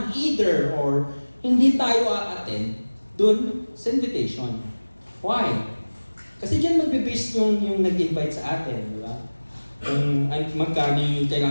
either or hindi tayo a-attend dun sa invitation. Why? Kasi dyan magbe-base yung nag-invite sa atin, di ba? Kung magkano yung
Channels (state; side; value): inverted; both; correlation -1.00